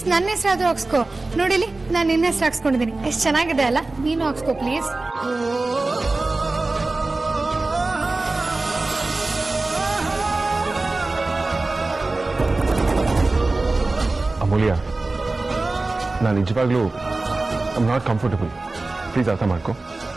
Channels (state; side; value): quieter; left; 3.3 dB